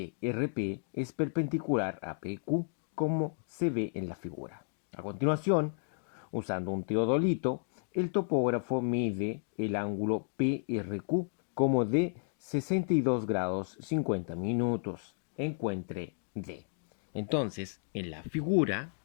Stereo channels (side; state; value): right; silent; digital silence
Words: RP es perpendicular a PQ, como se ve en la figura. A continuación, usando un teodolito, el topógrafo mide el ángulo PRQ como de 62 grados 50 minutos. Encuentre D. Entonces, en la figura